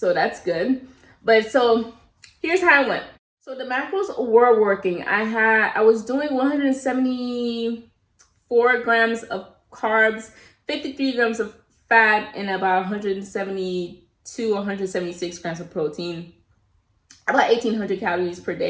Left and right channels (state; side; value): identical; both; correlation 1.00